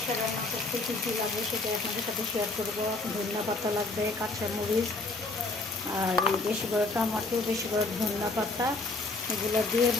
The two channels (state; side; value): quieter; right; 3.3 dB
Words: রান্না করতে কী কী লাগবে সেটা আপনাদের সাথে শেয়ার করবো। ধনিয়া পাতা লাগবে, কাঁচামরিচ, আর বেশি করে টমাটো, বেশি করে ধনিয়া পাতা, এগুলো দিয়ে